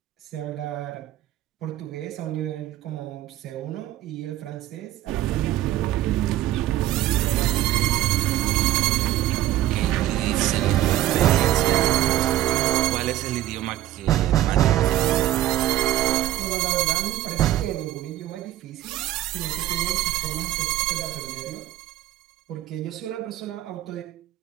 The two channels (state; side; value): quieter; left; 13.9 dB